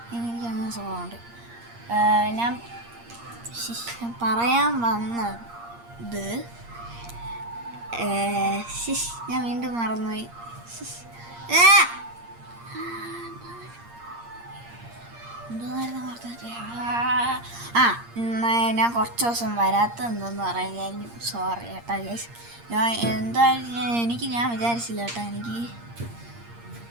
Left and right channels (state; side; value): late; left; 8.6 ms